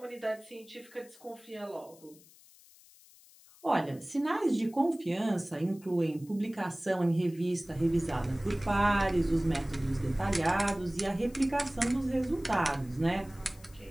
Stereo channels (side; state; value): left; noise; hiss, 25 dB below the sound